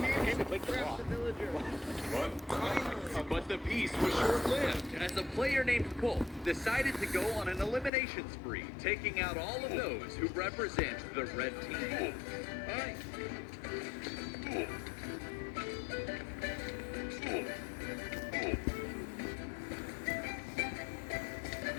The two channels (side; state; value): right; drops out; at 7.9 s